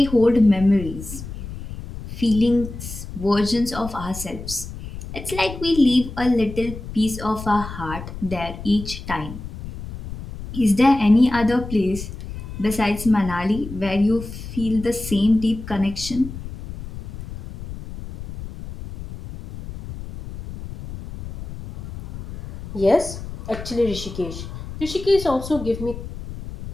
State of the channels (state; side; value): noise; left; rumble, 11 dB below the sound